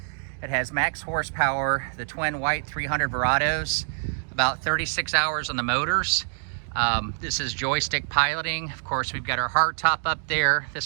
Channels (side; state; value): left; silent; digital silence